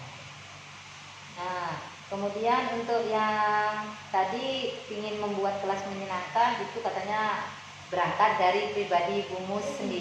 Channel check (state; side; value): identical; both; correlation 1.00